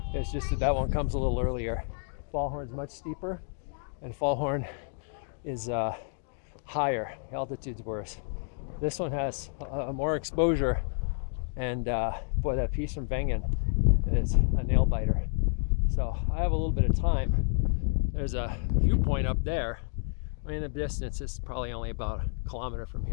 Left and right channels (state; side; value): silent; right; digital silence